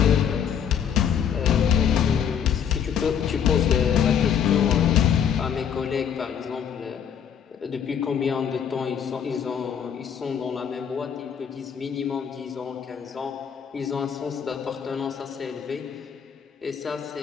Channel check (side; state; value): right; quieter; 8.1 dB